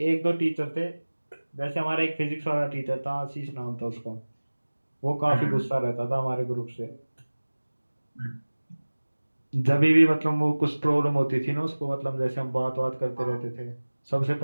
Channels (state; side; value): inverted; both; correlation -1.00